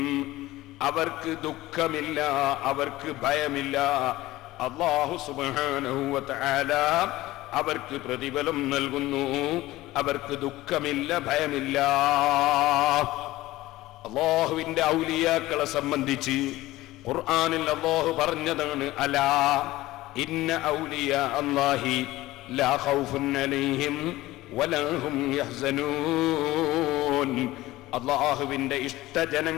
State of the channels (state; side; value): quieter; right; 17.5 dB